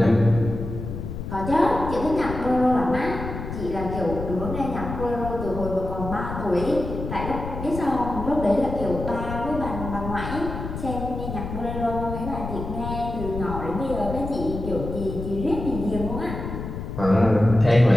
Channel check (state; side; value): noise; left; rumble, 7 dB below the sound